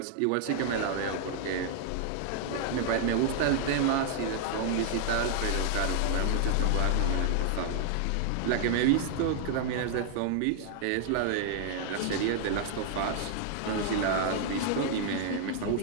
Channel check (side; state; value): both; different; correlation -0.01